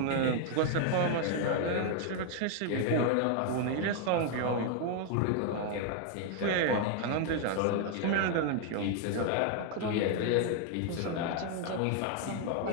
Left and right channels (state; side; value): different; both; correlation 0.00